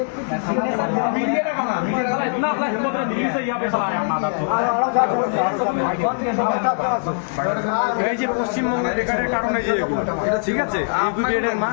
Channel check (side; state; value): right; silent; digital silence